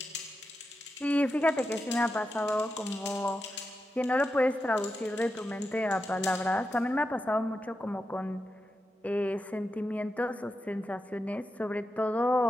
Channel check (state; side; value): normal; both; correlation 0.88